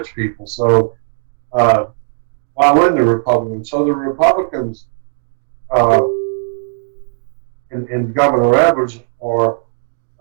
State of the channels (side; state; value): left; silent; digital silence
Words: people. So why wouldn't the Republicans? So the Republicans uh, and Governor Edwards are.